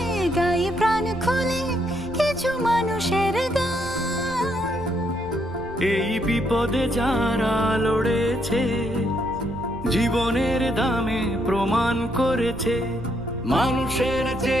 গাই প্রাণ খুলে কিছু মানুষের গান। এই বিপদে যারা লড়েছে, জীবনের দামে প্রমাণ করেছে, মানুষের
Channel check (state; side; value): noise; right; rumble, 16 dB below the sound